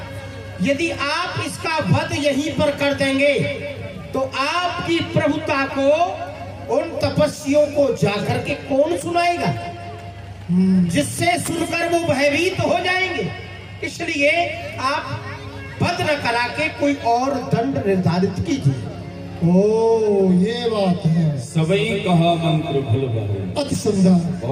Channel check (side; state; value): both; identical; correlation 1.00